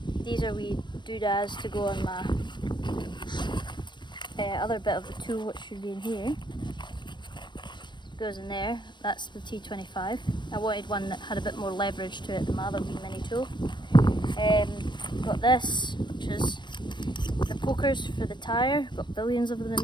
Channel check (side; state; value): right; late; 0.22 ms